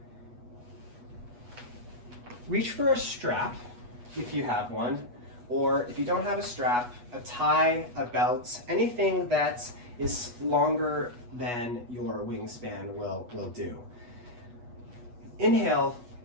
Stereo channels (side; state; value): left; late; 8.2 ms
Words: Reach for a strap if you have one, or if you don't have a strap, a tie, a belt, anything that is longer than your wingspan will do. Inhale,